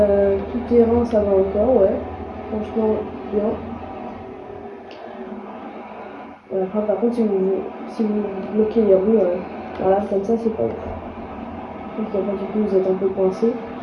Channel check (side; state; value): both; identical; correlation 1.00